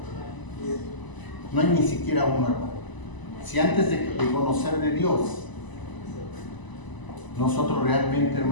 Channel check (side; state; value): right; late; 1.0 ms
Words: No hay ni siquiera uno, hermano. Si antes de conocer de Dios, nosotros realmente,